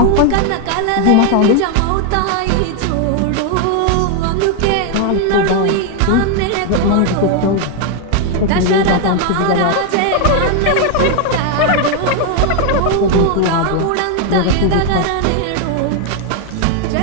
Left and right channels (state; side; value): different; both; correlation 0.01